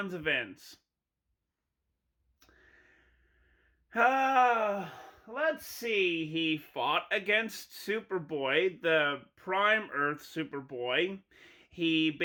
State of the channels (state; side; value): identical; both; correlation 1.00